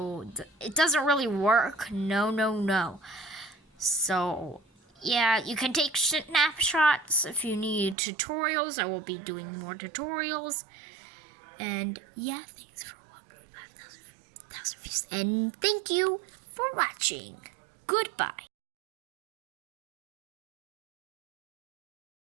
it doesn't really work. No. So, yeah, you can take snapshots if you need tutorials. I will be doing more tutorials. And yeah, thanks for 1.5 thousand views. And thank you for watching. Goodbye.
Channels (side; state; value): left; drops out; at 8.0 s